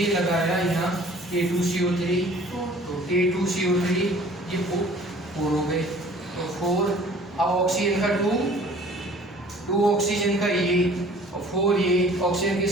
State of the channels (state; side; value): normal; both; correlation 0.50